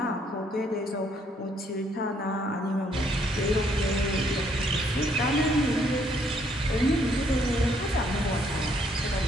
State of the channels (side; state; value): both; normal; correlation 0.68